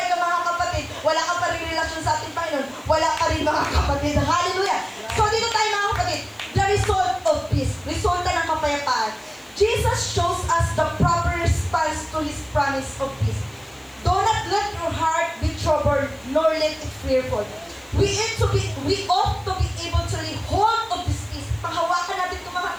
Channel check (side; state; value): left; noise; hiss, 28 dB below the sound